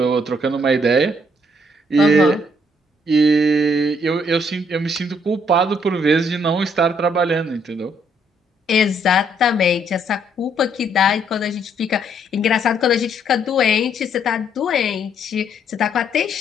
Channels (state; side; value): normal; both; correlation 0.69